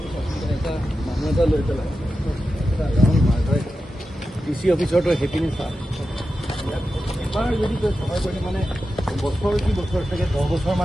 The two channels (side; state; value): both; normal; correlation 0.91